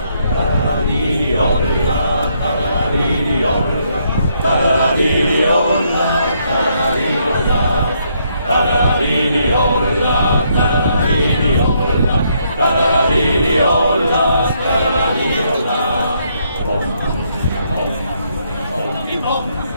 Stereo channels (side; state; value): both; inverted; correlation -0.73